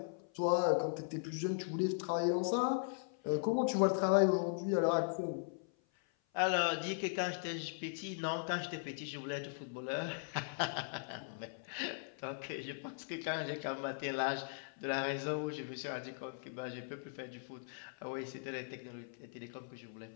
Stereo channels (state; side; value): silent; right; 52 dB below the other